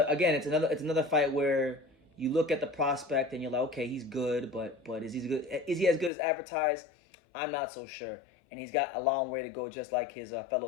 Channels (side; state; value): right; drops out; at 6.1 s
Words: again, it's another fight where you look at the prospect and you're like, okay, he's good, but is he good? Is he as good as advertised? I'm not so sure. And he's got a long way to go, just like his fellow